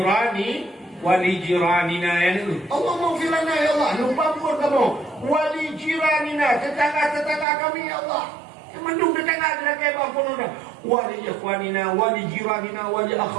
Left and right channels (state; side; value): drops out; left; at 7.5 s